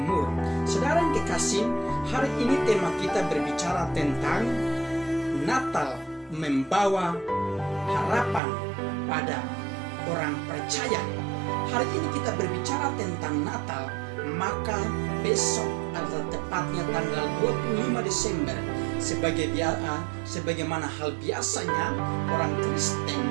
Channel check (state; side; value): drops out; left; at 8.4 s